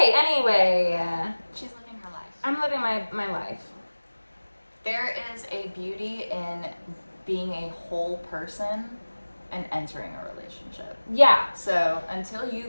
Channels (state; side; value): inverted; both; correlation -1.00